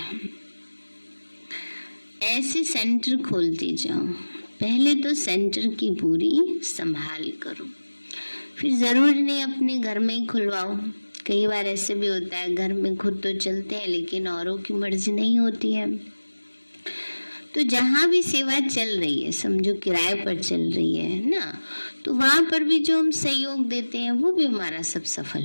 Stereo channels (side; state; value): both; inverted; correlation -1.00